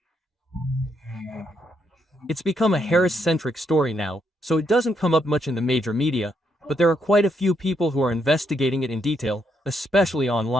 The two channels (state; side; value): normal; both; correlation 0.77